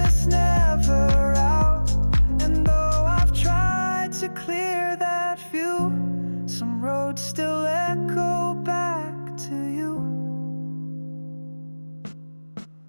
never out. And though I've tried to clear that view, some roads still echo back to you.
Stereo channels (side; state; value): both; inverted; correlation -1.00